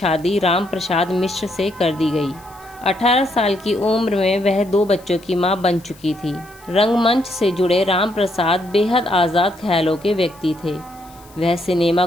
राम प्रसाद मिश्र से कर दी गई। 18 साल की उम्र में वह 2 बच्चों की मां बन चुकी थी। रंगमंच से जुड़े राम प्रसाद बेहद आज़ाद ख्यालों के व्यक्ति थे। वह सिनेमा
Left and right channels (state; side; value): noise; left; hiss, 26 dB below the sound